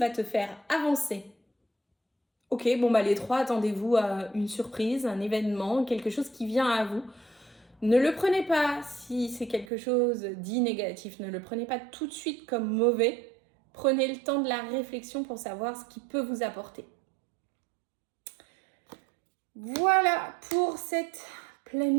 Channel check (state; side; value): drops out; left; at 9.7 s